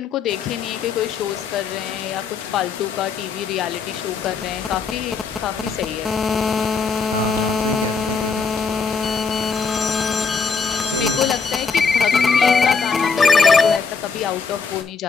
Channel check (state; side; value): quieter; right; 5.1 dB